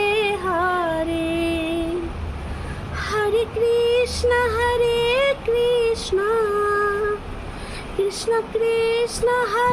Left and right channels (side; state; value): both; identical; correlation 1.00